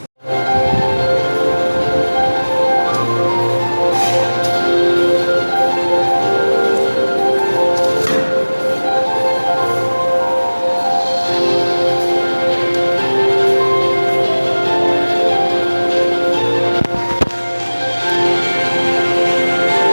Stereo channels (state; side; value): inverted; both; correlation -1.00